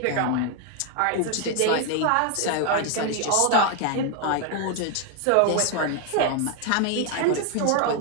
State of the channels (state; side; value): different; both; correlation 0.00